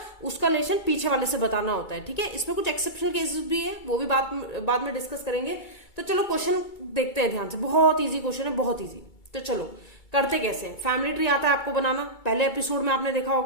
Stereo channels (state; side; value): late; right; 2.3 ms